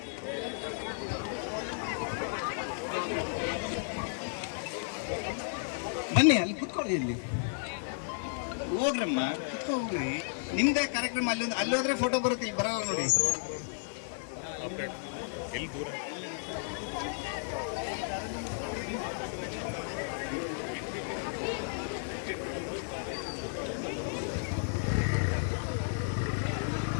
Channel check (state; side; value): silent; right; 56 dB below the other